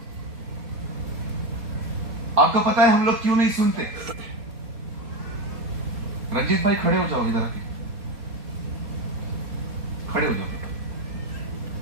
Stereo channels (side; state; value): left; late; 4.2 ms